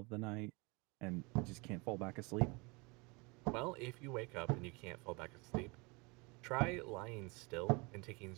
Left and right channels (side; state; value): left; quieter; 27.8 dB